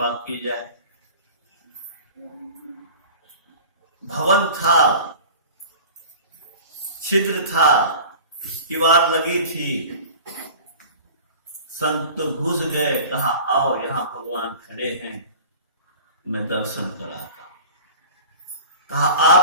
की जाए। भवन था, छिद्र था, दीवार लगी थी, संत तो घुस गए, कहा आओ यहां भगवान खड़े हैं, मैं दर्शन कराता हूं। कहा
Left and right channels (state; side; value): inverted; both; correlation -0.40